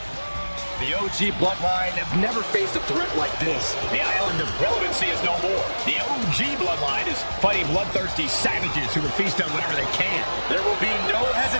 The OG Bloodline have never faced a threat like this. The island of relevancy is no more. The OG Bloodline is fighting bloodthirsty savages who would feast on whatever they can. There will be no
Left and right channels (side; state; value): both; inverted; correlation -1.00